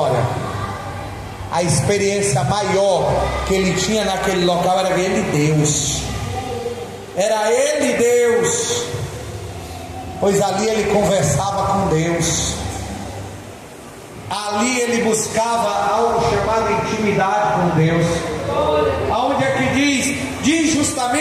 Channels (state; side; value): identical; both; correlation 1.00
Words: A experiência maior que ele tinha naquele local era ele, Deus. Era ele, Deus. Pois ali ele conversava com Deus. Ali ele buscava algo chamado intimidade com Deus. Aonde é que diz